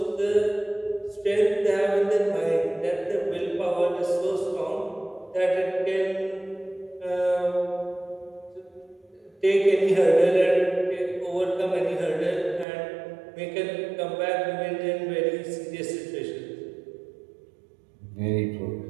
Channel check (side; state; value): left; drops out; at 12.7 s